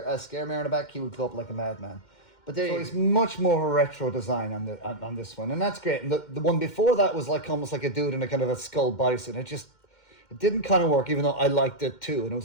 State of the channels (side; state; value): right; late; 2.1 ms